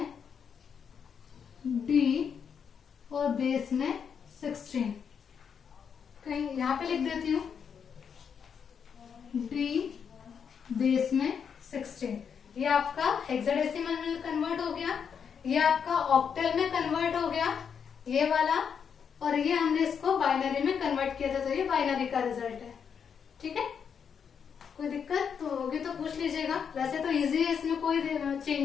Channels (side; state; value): right; quieter; 7.0 dB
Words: डी और बेस में 16, कहीं यहाँ पे लिख देती हूँ डी बेस में 16। ये आपका हेक्साडेसिमल में कन्वर्ट हो गया, ये आपका ऑक्टल में कन्वर्ट हो गया ये वाला, और ये हमने इसको बाइनरी में कन्वर्ट किया था, तो ये बाइनरी का रिजल्ट है, ठीक है। कोई दिक्कत तो होगी तो पूछ लीजिएगा। वैसे तो इजी है, इसमें कोई